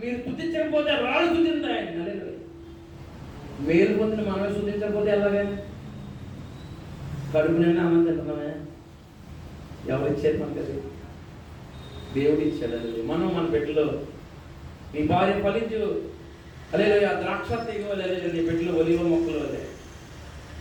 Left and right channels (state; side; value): identical; both; correlation 1.00